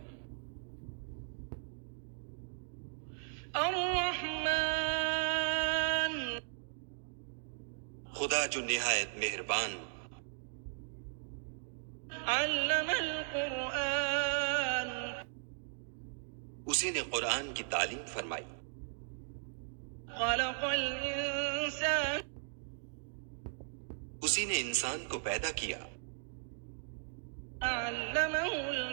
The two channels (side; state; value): left; silent; digital silence